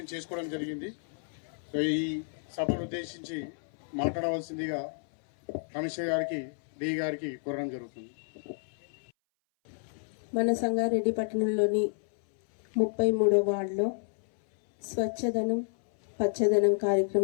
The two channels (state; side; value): silent; right; 58 dB below the other